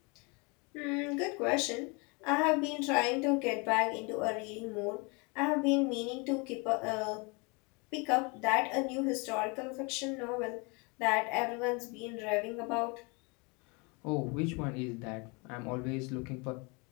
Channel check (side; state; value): right; quieter; 30.2 dB